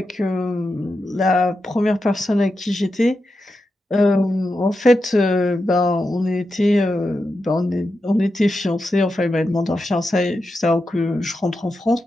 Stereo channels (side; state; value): both; normal; correlation 0.88